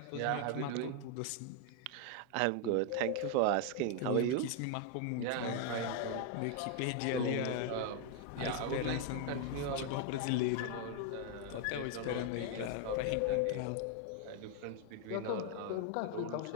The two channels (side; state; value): both; different; correlation 0.00